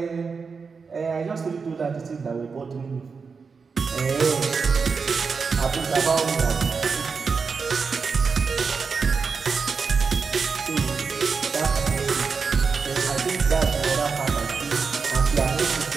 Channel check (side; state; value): left; quieter; 5.2 dB